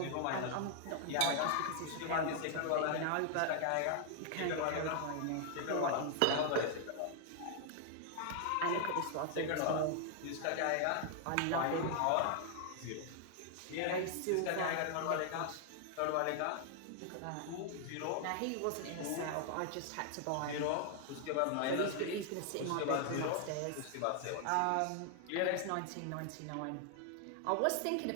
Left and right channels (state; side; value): different; both; correlation 0.00